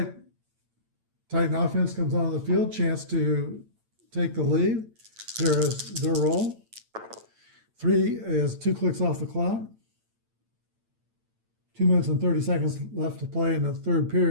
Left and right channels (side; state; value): left; late; 8.9 ms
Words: Titan offense comes on the field, chance to take the lead. Here is their roll. 3 is 2 clicks off the clock. 2 minutes and 30 seconds left to play in the third